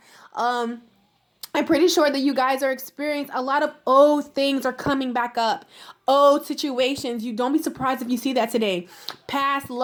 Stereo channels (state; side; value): identical; both; correlation 1.00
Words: I'm pretty sure that you guys are experiencing a lot of old things are coming back up. Old situations. You don't be surprised if you see that today. Past